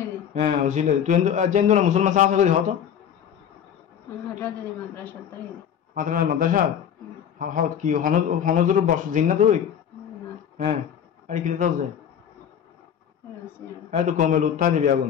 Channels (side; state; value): right; quieter; 8.8 dB